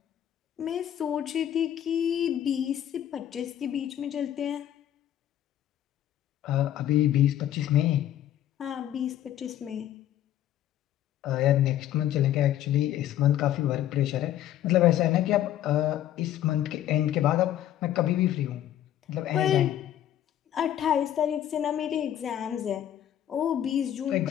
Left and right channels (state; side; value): quieter; right; 11.5 dB